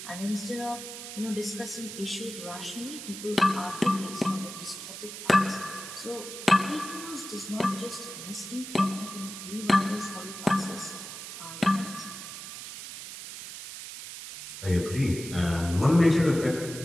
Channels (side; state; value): right; noise; hiss, 10 dB below the sound